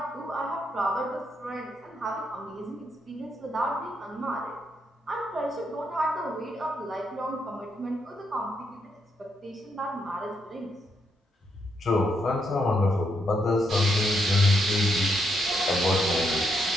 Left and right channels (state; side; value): normal; both; correlation 0.78